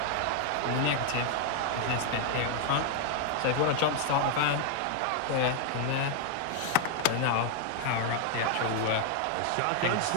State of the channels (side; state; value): both; different; correlation 0.00